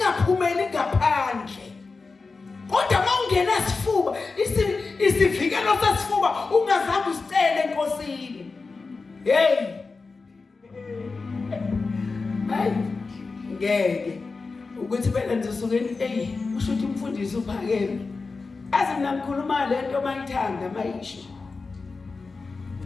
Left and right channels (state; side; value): quieter; right; 4.2 dB